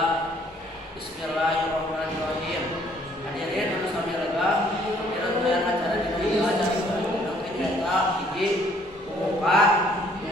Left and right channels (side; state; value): both; normal; correlation 0.62